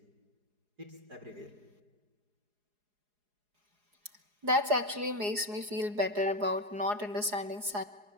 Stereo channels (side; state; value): left; late; 4.8 ms